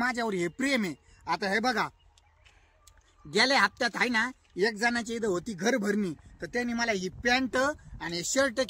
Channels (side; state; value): both; identical; correlation 1.00